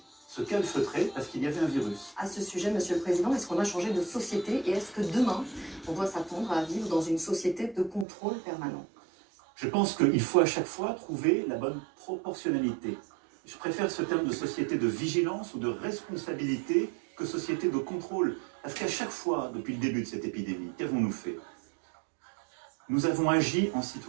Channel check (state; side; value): drops out; left; at 8.1 s